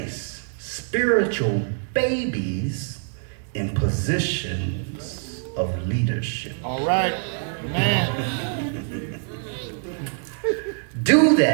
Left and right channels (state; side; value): silent; left; digital silence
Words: spiritual babies in positions of leadership. All right. Amen. Do